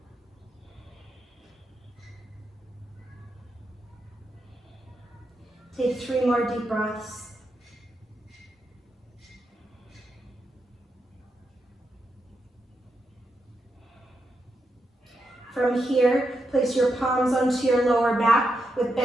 Take 3 more deep breaths. From here, place your palms onto your lower back with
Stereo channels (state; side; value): normal; both; correlation 0.84